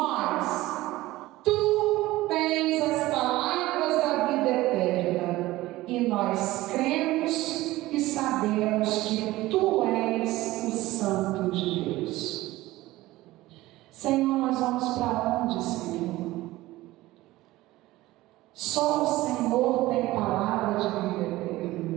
Tu tens as palavras da vida eterna, e nós cremos e sabemos que tu és o Santo de Deus. Senhor, nós vamos para onde, Senhor? Só o Senhor tem palavra de vida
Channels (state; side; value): quieter; left; 17.7 dB